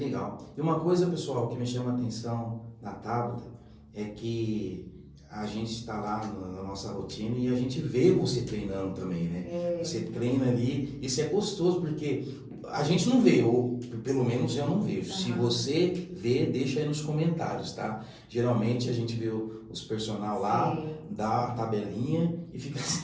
E uma coisa, pessoal, que me chama a atenção na Tabata é que a gente está lá na nossa rotina e a gente vê você treinando também, né? Você treina ali, isso é gostoso porque a gente não vê, ou pelo menos eu não vejo. Se você vê, deixa aí nos comentários, tá? Geralmente a gente vê os personal lá, dá a tabelinha e fica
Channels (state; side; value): identical; both; correlation 1.00